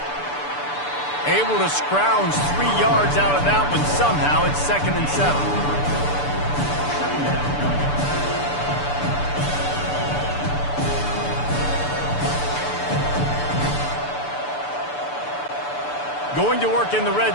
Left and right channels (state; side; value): late; right; 6.9 ms